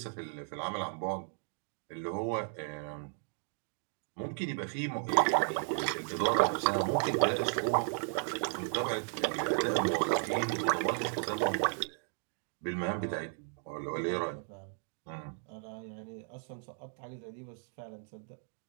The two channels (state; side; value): silent; left; 54 dB below the other